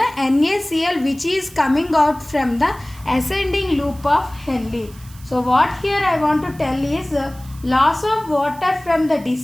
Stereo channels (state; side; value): noise; right; hiss, 23 dB below the sound